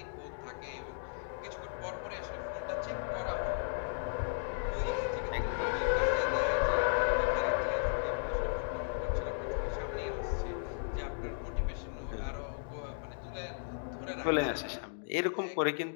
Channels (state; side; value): silent; right; digital silence